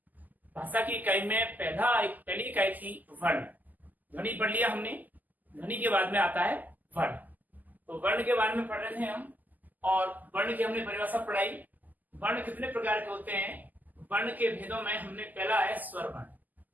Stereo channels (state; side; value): late; left; 0.083 ms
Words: भाषा की इकाई में पहली इकाई थी वर्ण। ध्वनि पढ़ लिया हमने। ध्वनि के बाद में आता है वर्ण। तो वर्ण के बारे में पढ़ रहे थे हम और वर्ण की हमने परिभाषा पढ़ाई। वर्ण कितने प्रकार के होते हैं? वर्ण के भेदों में हमने पहला है स्वर वर्ण।